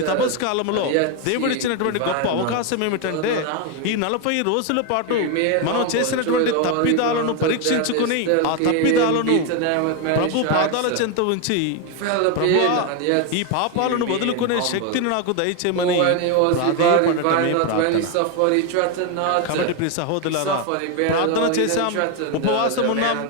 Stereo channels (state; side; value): different; both; correlation 0.01